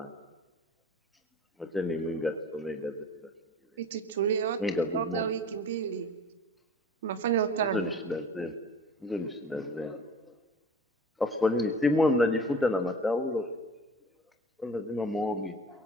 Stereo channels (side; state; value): both; normal; correlation 0.41